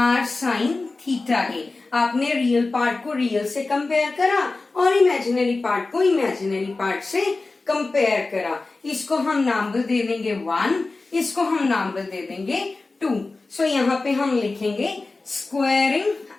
sin थीटा के। आपने रियल पार्ट को रियल से कंपेयर करा और इमेजिनरी पार्ट को इमेजिनरी पार्ट से कंपेयर करा। इसको हम नंबर दे देंगे 1, इसको हम नंबर दे देंगे 2। सो यहाँ पे हम लिखेंगे स्क्वायरिंग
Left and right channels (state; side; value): quieter; right; 3.5 dB